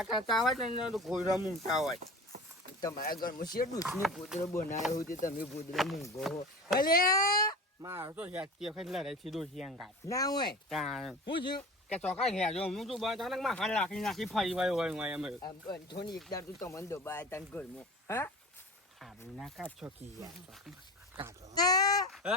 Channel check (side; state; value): both; normal; correlation 0.35